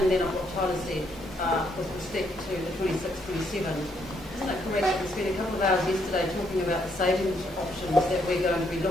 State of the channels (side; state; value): both; normal; correlation 0.73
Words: then of what Tyler said, with respect to the 26-27, isn't it correct that we spent a couple of hours yesterday talking about the savings options that we're going to be